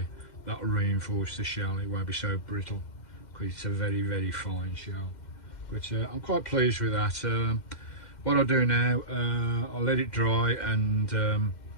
that'll reinforce the shell. It won't be so brittle because it's a very, very fine shell. But I'm quite pleased with that. What I'll do now, I'll let it dry and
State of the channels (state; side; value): late; right; 2.1 ms